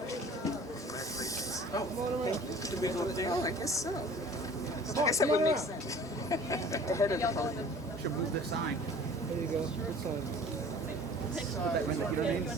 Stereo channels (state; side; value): normal; both; correlation 0.47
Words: Oh, I guess so. I guess that would make sense. Ahead of the podium. Should move the sign. There you go. Good sign. You know what I mean?